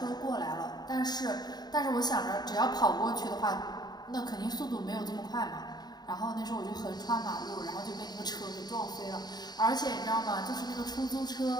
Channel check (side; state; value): right; late; 0.20 ms